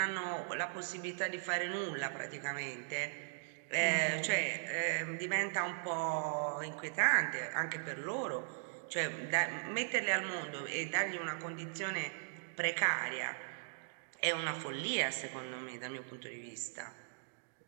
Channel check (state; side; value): silent; left; digital silence